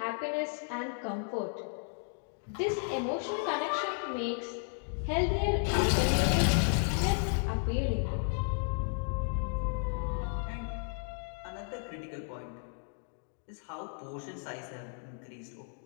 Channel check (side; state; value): right; silent; 55 dB below the other